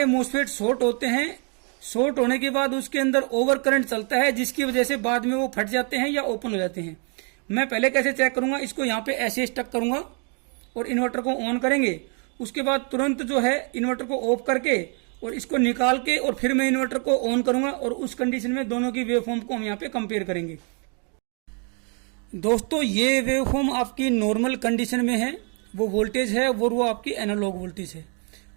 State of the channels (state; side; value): quieter; left; 38.3 dB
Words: मोसफेट शॉर्ट होते हैं, शॉर्ट होने के बाद उसके अंदर ओवर करंट चलता है, जिसकी वजह से बाद में वो फट जाते हैं या ओपन हो जाते हैं। मैं पहले कैसे चेक करूंगा, इसको यहाँ पे ऐसे स्टक करूंगा और इन्वर्टर को ऑन करेंगे। उसके बाद तुरंत जो है इन्वर्टर को ऑफ करके और इसको निकाल के और फिर मैं इन्वर्टर को ऑन करूंगा, और उस कंडीशन में दोनों की वेवफॉर्म को हम यहाँ पे कंपेयर करेंगे। दोस्तों, ये वेवफॉर्म आपकी नॉर्मल कंडीशन में है, वो वोल्टेज है वो आपकी एनालॉग वोल्टेज है।